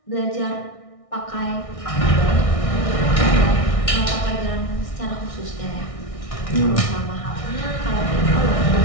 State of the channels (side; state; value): right; late; 1.6 ms